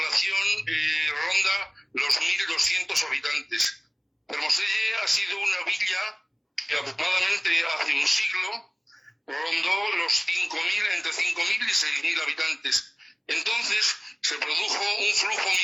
ronda los 1.200 habitantes. Fermoselle ha sido una villa que aproximadamente hace un siglo rondó los 5.000, entre 5.000 y 6.000 habitantes. Entonces se produjo un flujo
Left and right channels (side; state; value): both; identical; correlation 1.00